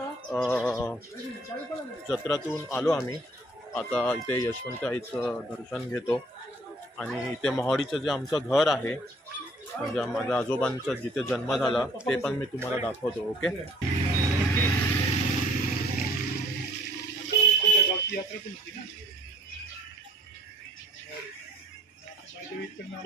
जत्रातून आलो आम्ही. आता इथे यशवंत आईचं दर्शन घेतो आणि इथे मोहाडीचं जे आमचं घर आहे म्हणजे माझ्या आजोबांचा जिथे जन्म झाला ते पण मी तुम्हाला दाखवतो. ओके. गावची यात्रा पण होती ना.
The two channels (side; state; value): both; normal; correlation 0.57